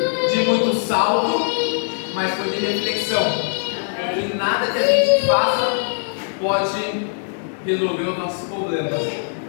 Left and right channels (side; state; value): right; silent; digital silence